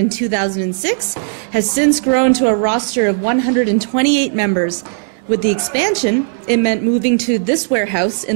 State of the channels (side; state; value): left; silent; digital silence